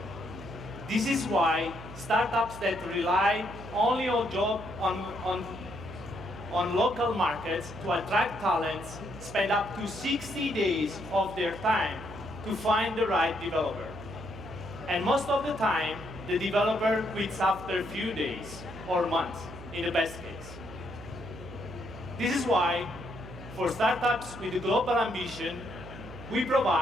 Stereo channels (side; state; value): right; noise; hum, 14 dB below the sound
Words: This is why startups that rely only on local markets to attract talents spend up to 60 days of their time to find the right developer. And most of the time, the developer quits after a few days or months, in the best case. This is why, for startups with a global ambition, we